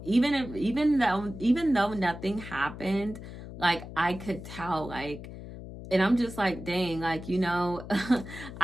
even though nothing happened, like I could tell, like, and I'm just like, dang, like,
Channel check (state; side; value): noise; left; hum, 12 dB below the sound